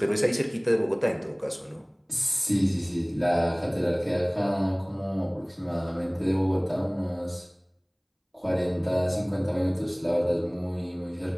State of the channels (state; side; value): identical; both; correlation 1.00